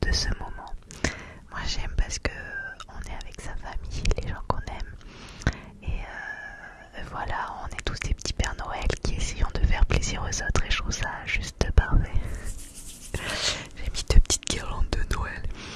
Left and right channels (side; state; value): both; identical; correlation 1.00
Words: de ce moment. Moi j'aime parce que on est avec sa famille, les gens qu'on aime. Et voilà, on est tous des petits Pères Noël qui essayons de faire plaisir aux autres et je trouve ça juste parfait. J'ai mis deux petites guirlandes de Noël.